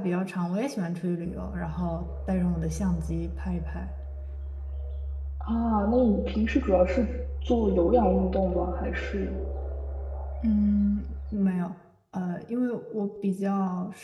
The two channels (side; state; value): both; identical; correlation 1.00